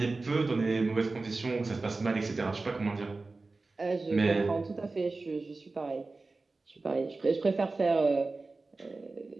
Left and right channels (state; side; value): quieter; left; 3.5 dB